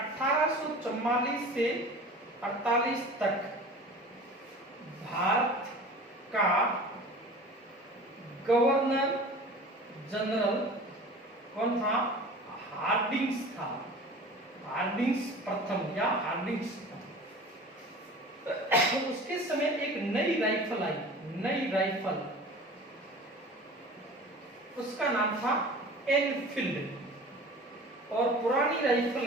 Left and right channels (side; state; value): both; normal; correlation 0.40